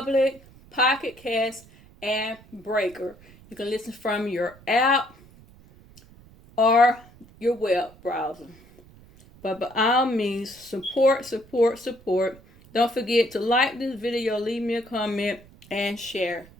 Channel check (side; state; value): right; noise; rumble, 24 dB below the sound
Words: Pocket Cast, and Breaker. You can listen from your app or your web browser. But by all means, support, support, support. Don't forget to like this video, leave me a comment, and share.